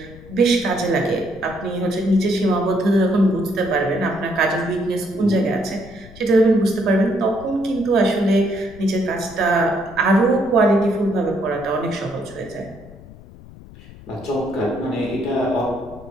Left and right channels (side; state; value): left; noise; rumble, 19 dB below the sound